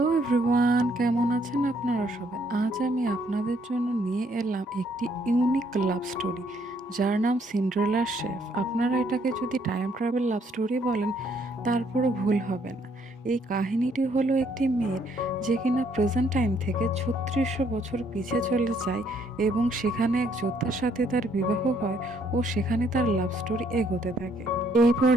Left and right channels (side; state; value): both; normal; correlation 0.68